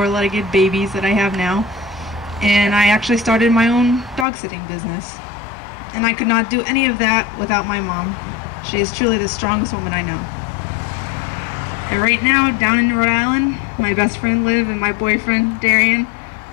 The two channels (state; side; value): drops out; right; at 4.2 s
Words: babies that I have now, and I actually started my own dog-sitting business. And I could not do any of that without my mom. She is truly the strongest woman I know. And right now, down in Rhode Island, my best friend Liv and my boyfriend Darian